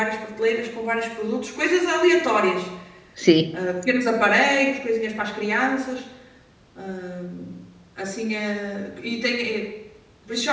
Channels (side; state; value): both; identical; correlation 1.00